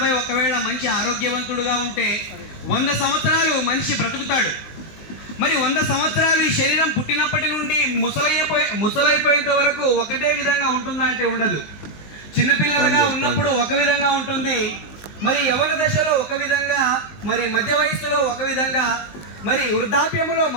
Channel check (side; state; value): right; late; 19 ms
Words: ఒకవేళ మంచి ఆరోగ్యవంతుడుగా ఉంటే 100 సంవత్సరాలు మనిషి బ్రతుకుతాడు. మరి 100 సంవత్సరాలు ఈ శరీరం పుట్టినప్పటి నుండి ముసలైపోయేంత వరకు ఒకటే విధంగా ఉంటుందా అంటే ఉండదు. చిన్నపిల్లలుగా ఉన్నప్పుడు ఒక విధంగా ఉంటుంది, మరి యవ్వన దశలో ఒక విధంగా, మరి మధ్య వయస్సులో ఒక విధంగా, మరి వృద్ధాప్యములో